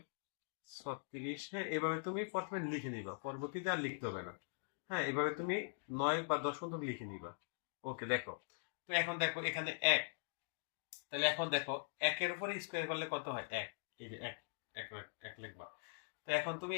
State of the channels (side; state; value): right; silent; digital silence